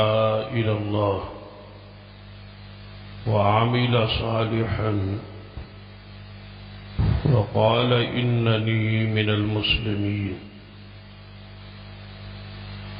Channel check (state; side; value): identical; both; correlation 1.00